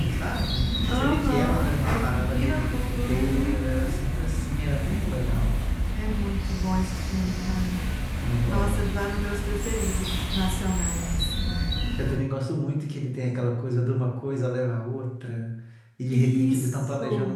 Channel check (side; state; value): both; identical; correlation 1.00